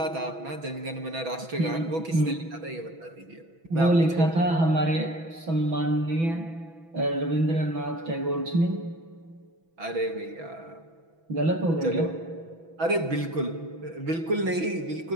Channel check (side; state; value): left; late; 6.1 ms